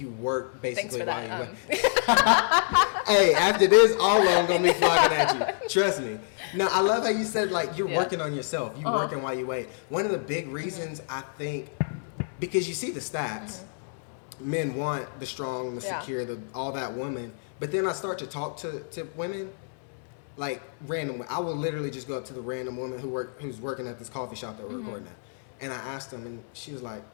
work basically while you wait. Hey, after this, all I'm gonna be flocking at you. Trust me. No, I love how you said, like, you're working on yourself. You're working while you wait. One of the big reasons, I think, because you see the stats, men want the strong, the secure, all that woman. But then I start to talk to women, like, random. I will literally just go up to the random woman who's working at this coffee shop that we're recording at, and I asked them, and she was like,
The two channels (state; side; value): silent; right; digital silence